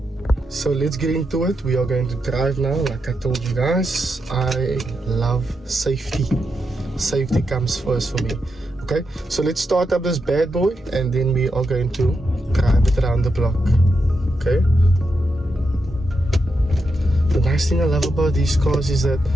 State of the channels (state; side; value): normal; both; correlation 0.85